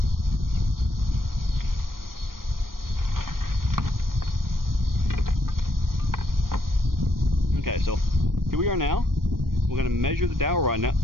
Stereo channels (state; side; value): late; left; 0.91 ms